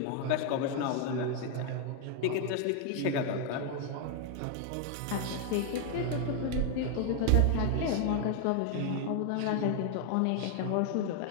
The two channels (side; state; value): both; different; correlation 0.00